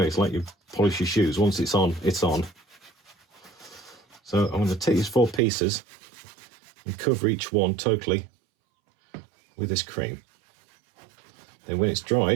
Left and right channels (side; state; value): left; drops out; at 5.4 s